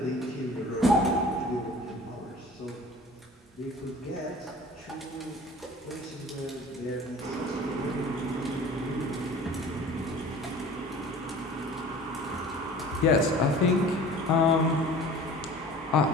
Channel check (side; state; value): both; normal; correlation 0.44